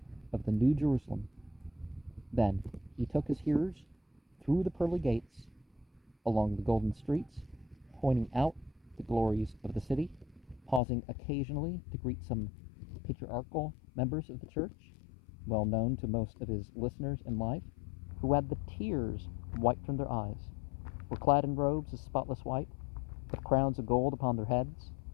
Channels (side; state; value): right; drops out; at 10.8 s